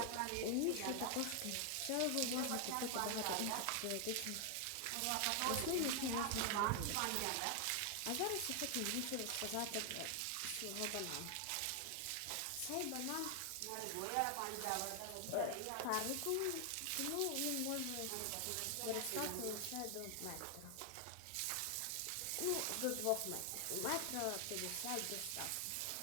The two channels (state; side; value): different; both; correlation 0.00